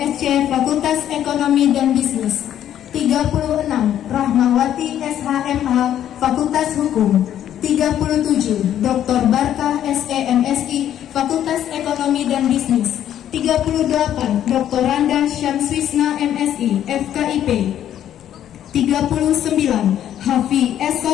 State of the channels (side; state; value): right; quieter; 10.9 dB